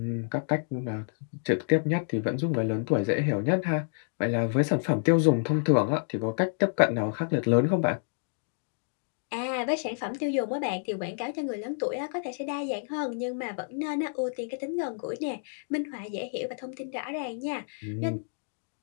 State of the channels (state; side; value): silent; right; digital silence